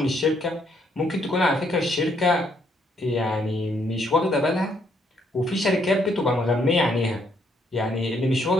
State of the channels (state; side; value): normal; both; correlation 0.71